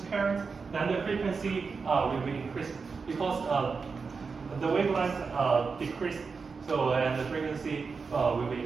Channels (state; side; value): quieter; left; 5.0 dB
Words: current, then the frequency will be increased because the wavelength decrease. So and the frequency will be